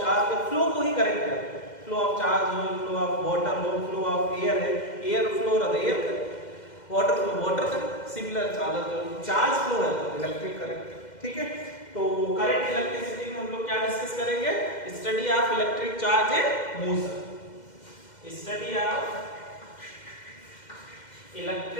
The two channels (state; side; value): late; right; 2.1 ms